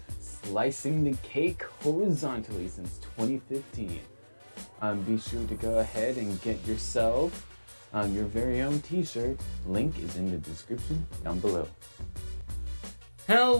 Slicing the cake horizontally since 2015. Be sure to go ahead and get yourself your very own t-shirt. Link is in the description down below.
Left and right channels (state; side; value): inverted; both; correlation -1.00